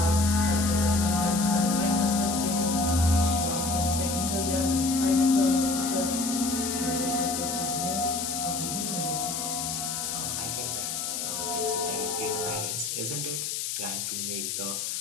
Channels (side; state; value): left; noise; hiss, 3 dB below the sound